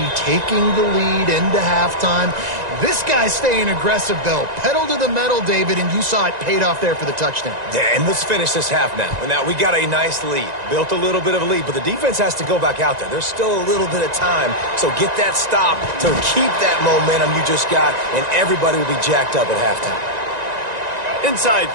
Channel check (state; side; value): late; left; 1.9 ms